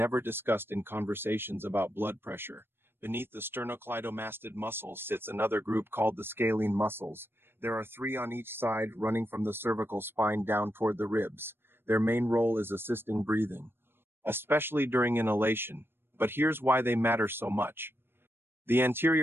discussed in conversations about blood pressure. Beneath the sternocleidomastid muscles sits another group called the scalene muscles. There are 3 on each side, running from the cervical spine down toward the ribs. Their main role is assisting breathing, especially during inhalation. But here's why they matter so much. The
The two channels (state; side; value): late; left; 0.11 ms